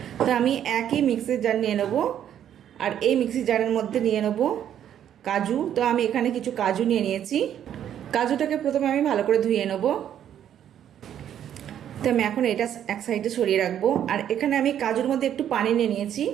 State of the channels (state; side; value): quieter; left; 10.1 dB